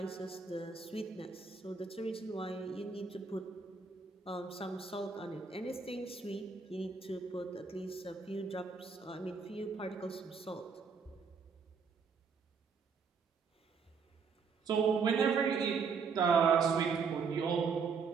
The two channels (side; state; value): left; quieter; 5.4 dB